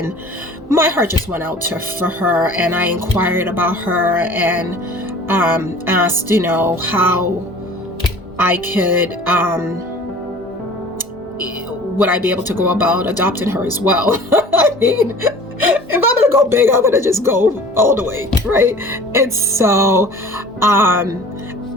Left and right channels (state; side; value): normal; both; correlation 0.45